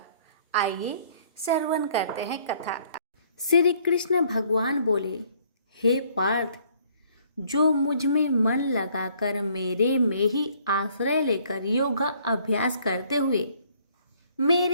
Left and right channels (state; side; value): inverted; both; correlation -0.62